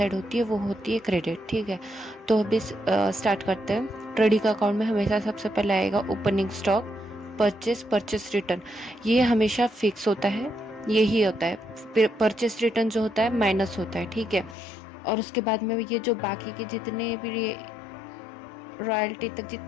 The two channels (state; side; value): drops out; right; at 14.6 s